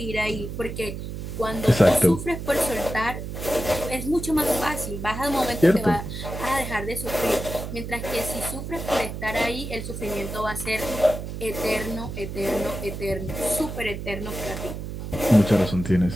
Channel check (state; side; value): noise; right; hum, 7 dB below the sound